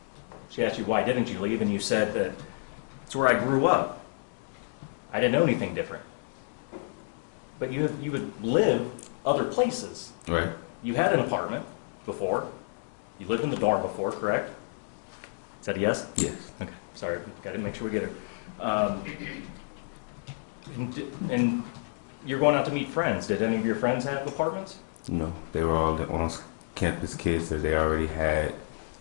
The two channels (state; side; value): silent; right; digital silence